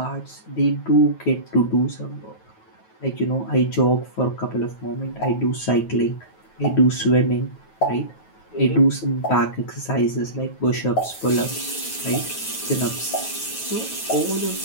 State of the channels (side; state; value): right; late; 9.2 ms